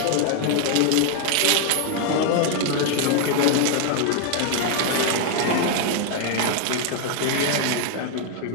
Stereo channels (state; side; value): different; both; correlation 0.00